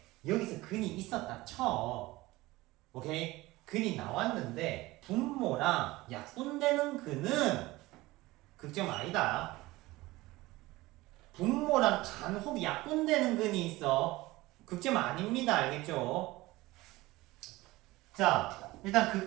여기서 근이 있었다 쳐. 오케이? 근이 나왔는데 분모랑 약분되는 근은 극점 아니다. 분모랑 간혹 약분되는 근이 있어. 극점 아닙니다. 알겠죠? 자, 일단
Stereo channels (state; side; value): quieter; left; 19.5 dB